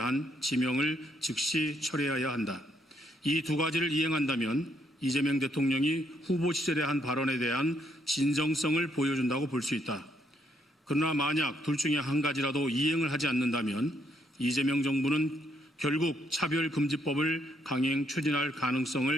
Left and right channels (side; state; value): both; normal; correlation 0.73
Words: 지명을 즉시 철회해야 한다. 이 두 가지를 이행한다면 이재명 대통령이 후보 시절에 한 발언에 대한 진정성을 보여준다고 볼 수 있다. 그러나 만약 둘 중에 한 가지라도 이행을 하지 않는다면 이재명 정부는 결국 차별금지법을 강행 추진할